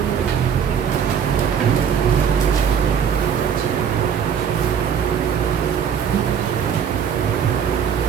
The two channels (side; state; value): left; quieter; 7.8 dB